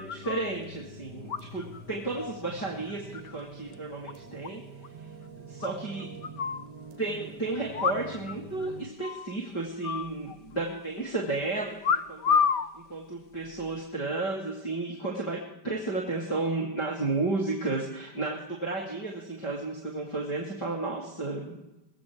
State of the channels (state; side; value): late; right; 5.1 ms